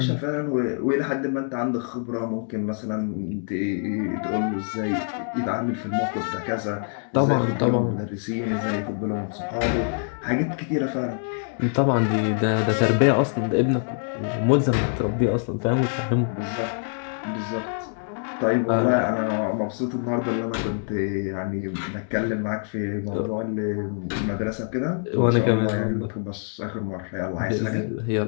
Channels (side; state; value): right; silent; 58 dB below the other